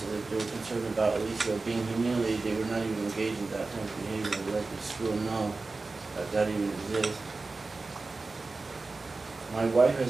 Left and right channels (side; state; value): left; quieter; 3.7 dB